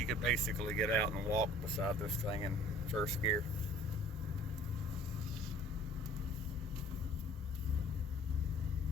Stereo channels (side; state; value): both; normal; correlation 0.51